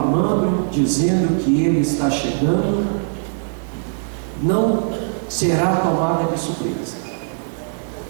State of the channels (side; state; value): left; silent; digital silence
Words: dizendo que ele está chegando. Não será tomada de surpresa.